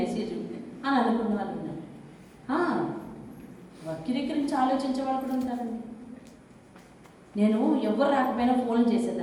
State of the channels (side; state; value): both; identical; correlation 1.00